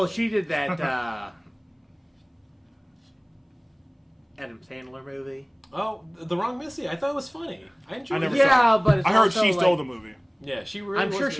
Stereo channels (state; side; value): identical; both; correlation 1.00